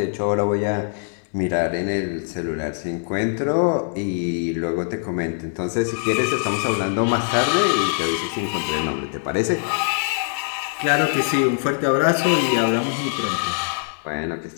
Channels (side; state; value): right; silent; 64 dB below the other